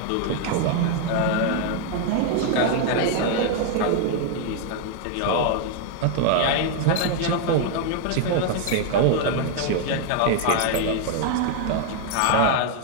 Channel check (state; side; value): different; both; correlation 0.00